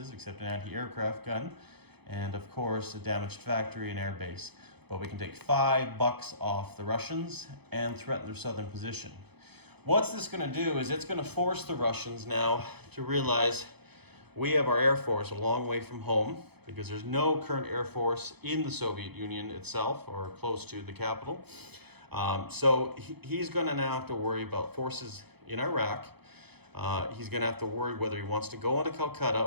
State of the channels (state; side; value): late; left; 0.98 ms